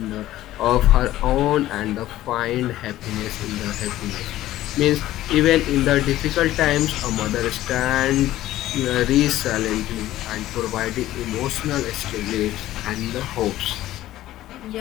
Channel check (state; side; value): quieter; right; 14.6 dB